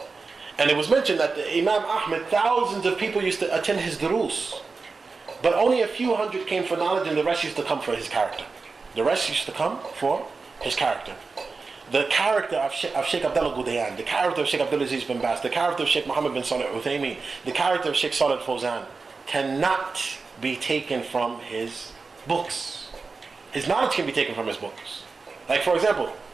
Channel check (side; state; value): left; quieter; 4.3 dB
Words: And it was mentioned that the Imam Ahmed, thousands of people used to attend his durus, but only a few hundred came for knowledge, and the rest used to come for his character. The rest used to come for his character. The character of Shaykh Abdullaah al Ghudayan, the character of Shaykh Abdulaziz bin Baz, the character of Shaykh Muhammad bin Salih al-Uthaymin, the character of Shaykh Salih al-Fawzan cannot be taken from his books. His knowledge can be taken from his books. Like, for example,